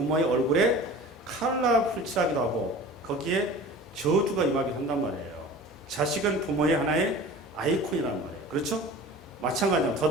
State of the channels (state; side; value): normal; both; correlation 0.40